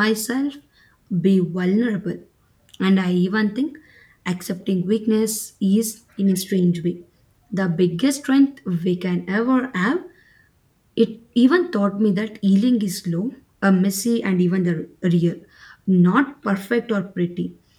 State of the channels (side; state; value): both; identical; correlation 1.00